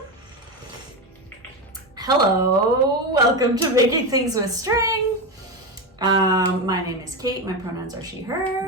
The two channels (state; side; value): normal; both; correlation 0.15